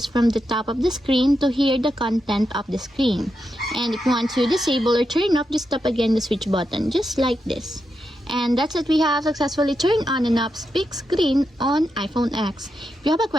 from the top of the screen to hear the content of the screen. And if you want to disable or turn off, just tap again the switch button, just like this. And that's it, we have successfully turned on and off split screen on iPhone X. If you have a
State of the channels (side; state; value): both; normal; correlation 0.86